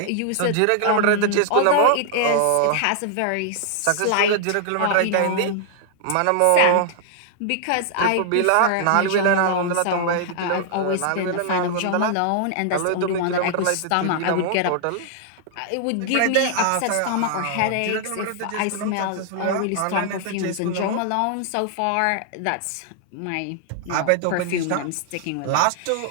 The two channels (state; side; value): different; both; correlation 0.00